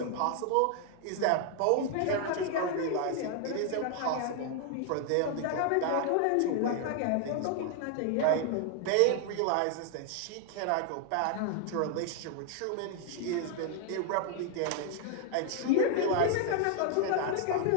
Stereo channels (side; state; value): both; different; correlation 0.00